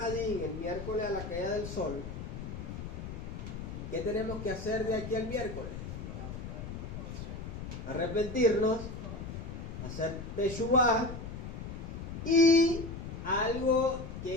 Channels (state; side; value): noise; left; rumble, 8 dB below the sound